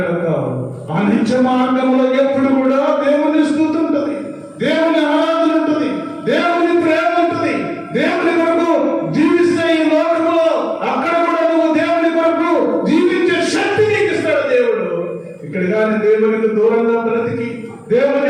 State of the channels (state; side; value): identical; both; correlation 1.00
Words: ఆ నిత్య మార్గంలో ఎప్పుడు కూడా దేవుని స్తుతి ఉంటుంది, దేవుని ఆరాధన ఉంటుంది, దేవుని ప్రేమ ఉంటుంది. దేవుని కొరకు జీవిస్తే ఈ లోకంలో అక్కడ కూడా నువ్వు దేవుని కొరకు జీవించే శక్తి నీకు ఇస్తాడు దేవుడు. ఇక్కడ కానీ దేవునికి దూరంగా బ్రతికి,